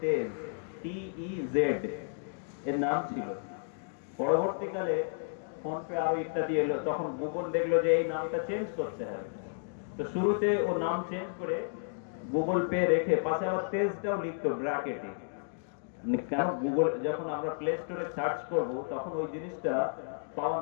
তেজ, TEZ এর নাম ছিল। পরবর্তীকালে ফোন পে আরো ইত্যাদি এলো, তখন গুগল দেখলো যে এই নামটা চেঞ্জ করতে হবে। তো শুরুতে ও নাম চেঞ্জ করে গুগল পে রেখে পাশে আবার তেজটাও লিখতো ব্র্যাকেটে। কেন, গুগল যখন আমরা প্লে স্টোরে সার্চ করব তখন ওই জিনিসটা পাওয়া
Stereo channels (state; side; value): silent; right; digital silence